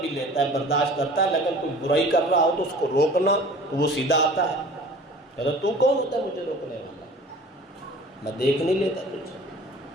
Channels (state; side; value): normal; both; correlation 0.45